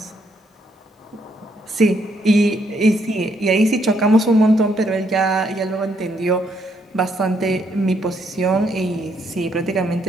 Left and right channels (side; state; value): both; normal; correlation 0.73